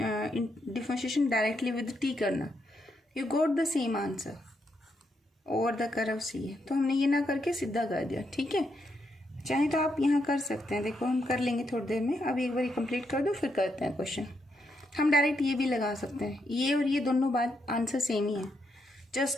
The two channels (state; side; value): normal; both; correlation 0.79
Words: डिफरेंशिएशन डायरेक्टली विद t करना, you got the same answer over the curve C है. तो हमने ये ना करके सीधा कर दिया. ठीक है, चाहे तो आप यहाँ कर सकते हैं. देखो हम कर लेंगे थोड़ी देर में, अभी एक बार कंप्लीट कर दो फिर करते हैं क्वेश्चन. हम डायरेक्ट ये भी लगा सकते हैं, ये और ये दोनों बात आंसर सेम ही है,